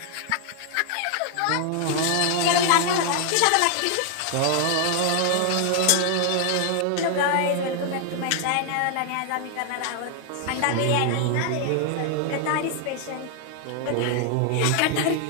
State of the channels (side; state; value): both; different; correlation 0.00